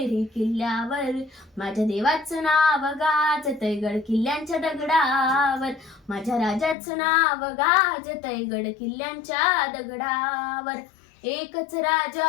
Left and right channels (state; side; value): drops out; right; at 6.8 s